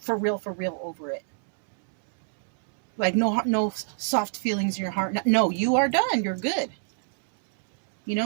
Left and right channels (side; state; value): left; silent; 60 dB below the other